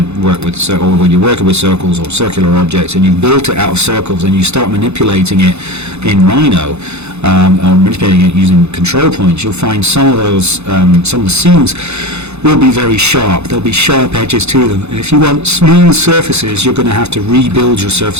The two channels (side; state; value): left; late; 0.81 ms